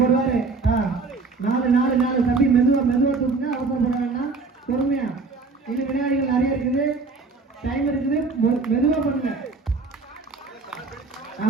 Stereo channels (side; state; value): left; quieter; 4.1 dB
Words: போடுவாரு. 4 தம்பி மெதுவா தூக்குங்க, அவசரப்பட வேண்டாம், பொறுமையா. இன்னும் விளையாடிகள் நிறைய இருக்குது, டைம் இருக்குது, மெதுவா பண்ணுங்க.